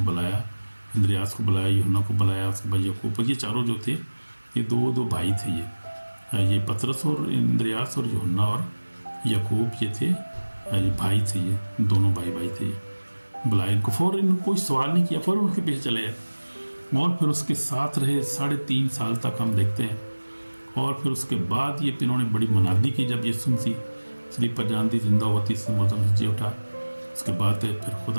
بلایا، اندریاس کو بلایا، یوحنا کو بلایا، اس کے بھائی یعقوب، یہ چاروں جو تھے یہ 2 بھائی تھے، یہ پترس اور اندریاس اور یوحنا اور یعقوب یہ تھے، یہ بھائی تھے، یہ دونوں بھائی تھے، بلایا ان کو، فوراً کوئی سوال نہیں کیا، فوراً ان کے پیچھے چلے گئے، اور پھر اس کے ساتھ رہے 3.5 سال تک ہم دیکھتے ہیں۔ اور پھر اس کے بعد یہ انہوں نے بڑی منادی کی، جب یسوع مسیح سلیب پر جان دی، زندہ ہوا، تیسرے مردوں سے جی اٹھا، اس کے بعد پھر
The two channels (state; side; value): inverted; both; correlation -1.00